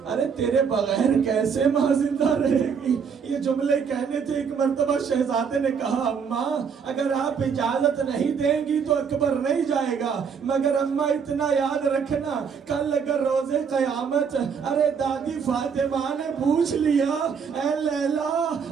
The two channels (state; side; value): quieter; left; 6.5 dB